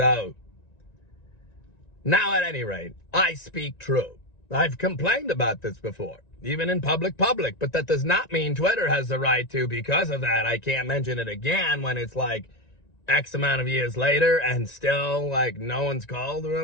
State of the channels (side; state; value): right; late; 1.9 ms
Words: now, at any rate, I speak true. I've complained about this before, even in public, but that does not mean Twitter has the right to, because of that, I can't mention it again when it's X amount of years later and still, no one's called